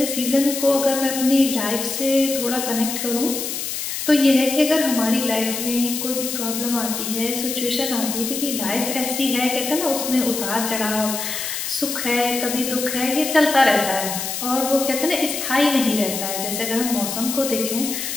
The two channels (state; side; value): noise; left; hiss, 4 dB below the sound